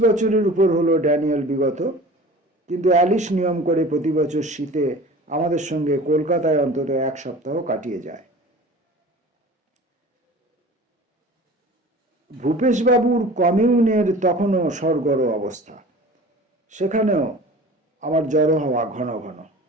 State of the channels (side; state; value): both; normal; correlation 0.40